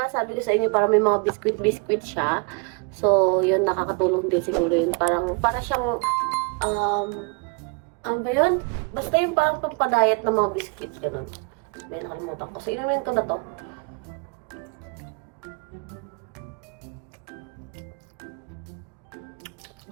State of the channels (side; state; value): left; quieter; 33.2 dB